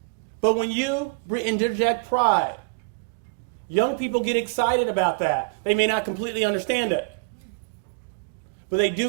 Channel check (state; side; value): quieter; left; 33.9 dB